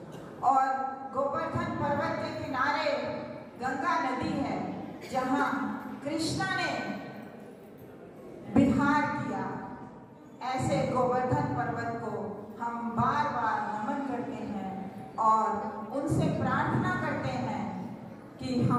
और गोवर्धन पर्वत के किनारे गंगा नदी है, जहां कृष्णा ने विहार किया। ऐसे गोवर्धन पर्वत को हम बार बार नमन करते हैं और उनसे प्रार्थना करते हैं कि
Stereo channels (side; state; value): both; identical; correlation 1.00